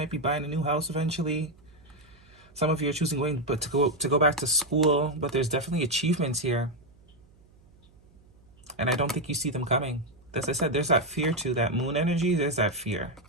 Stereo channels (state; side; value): noise; right; hum, 28 dB below the sound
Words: be buying a new house eventually. Some of you are choosing to go back to school, but there's definitely achievements here. And I don't think you see them coming. As I said, there's that fear too, that moon energy, there's that fear.